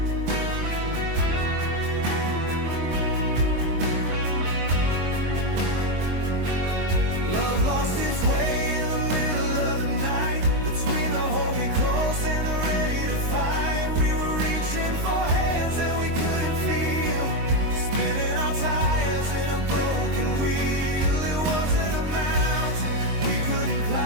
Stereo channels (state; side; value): late; left; 23 ms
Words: Lost its way in the middle of the night, between the hold me close and the ready to fight. We were reaching for hands that we couldn't feel, spinning our tires in a broken wheel. It wasn't a mountain we couldn't